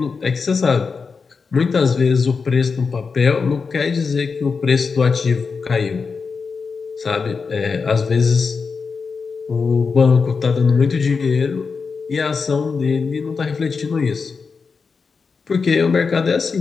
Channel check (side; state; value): right; quieter; 5.0 dB